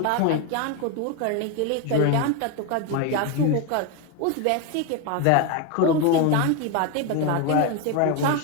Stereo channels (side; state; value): both; different; correlation 0.02